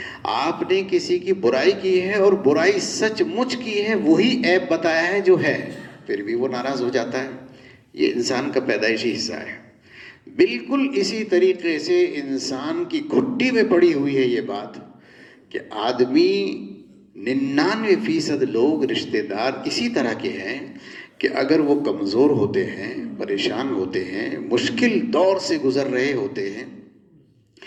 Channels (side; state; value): both; identical; correlation 1.00